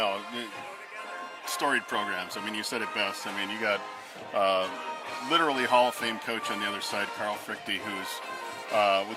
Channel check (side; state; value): both; identical; correlation 1.00